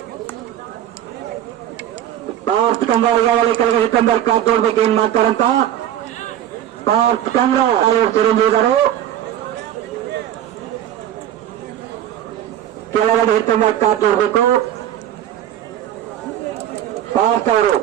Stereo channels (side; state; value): left; quieter; 11.4 dB